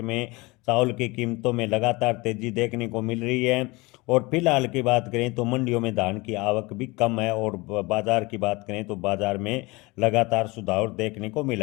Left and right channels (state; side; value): quieter; right; 23.8 dB